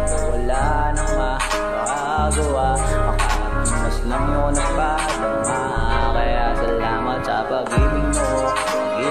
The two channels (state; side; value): identical; both; correlation 1.00